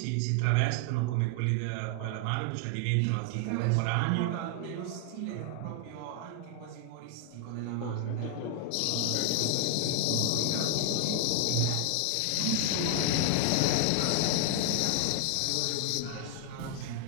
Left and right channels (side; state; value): both; different; correlation 0.00